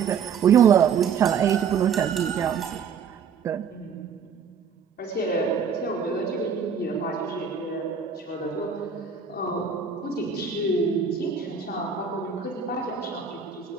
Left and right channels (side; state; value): left; quieter; 6.6 dB